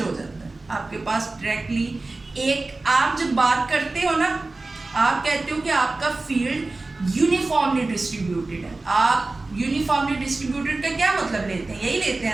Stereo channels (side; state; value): left; quieter; 3.3 dB